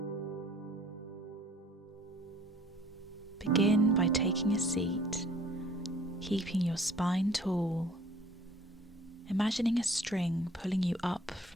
Begin by taking a seat, keeping your spine tall, imagining a string pulling you up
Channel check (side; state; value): both; normal; correlation 0.54